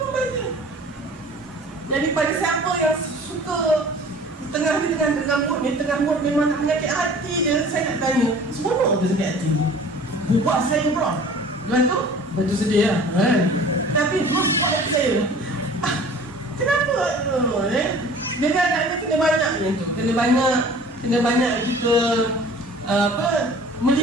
bahagia. Jadi pada siapa yang suka tengah mood ni, tengah mood memang nak menyakit hati je, saya nak tanya, seronok ke sakit hati ni? Buat saya bro. Lepas tu sedih lah tapi buat hati saya. Kenapa? Jadi agaknya kena banyak macam tu. Kena banyak kita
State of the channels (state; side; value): normal; both; correlation 0.46